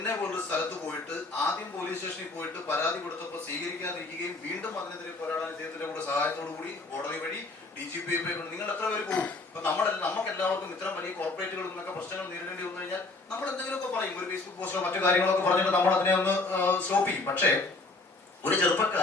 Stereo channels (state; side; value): quieter; right; 3.3 dB